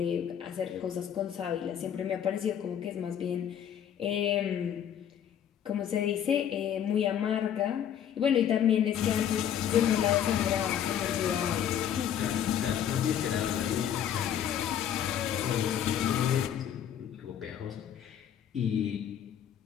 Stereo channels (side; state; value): right; quieter; 9.6 dB